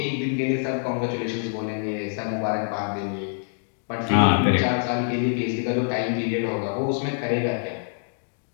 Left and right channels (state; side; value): silent; right; digital silence